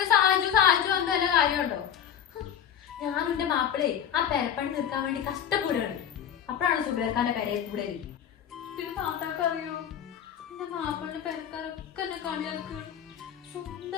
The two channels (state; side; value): quieter; right; 9.2 dB